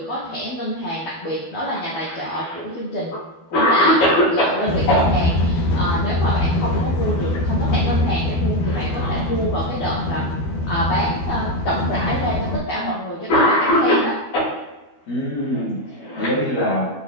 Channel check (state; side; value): late; right; 12 ms